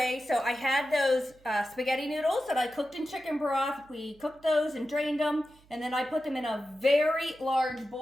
so I had those spaghetti noodles that I cooked in chicken broth. We cooked those and drained them. And then I put them in a very large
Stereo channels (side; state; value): right; noise; hum, 28 dB below the sound